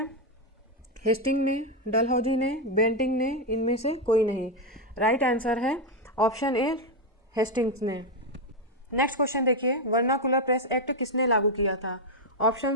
हेस्टिंग ने, डलहौजी ने, बेंटिंग ने, इनमें से कोई नहीं। राइट आंसर है ऑप्शन ए हेस्टिंग्स ने। नेक्स्ट क्वेश्चन देखिए, वर्नाकुलर प्रेस एक्ट किसने लागू किया था?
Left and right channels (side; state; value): both; normal; correlation 0.04